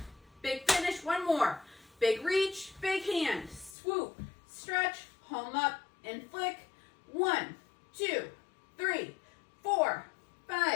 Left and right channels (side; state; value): right; drops out; at 3.8 s